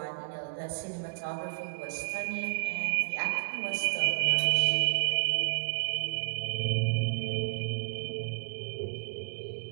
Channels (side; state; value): left; silent; digital silence